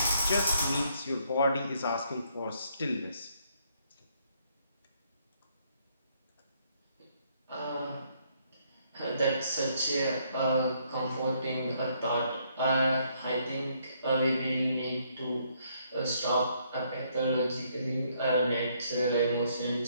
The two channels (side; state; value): both; inverted; correlation -0.70